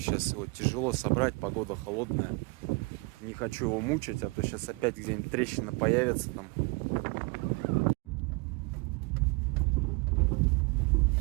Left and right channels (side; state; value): left; quieter; 27.8 dB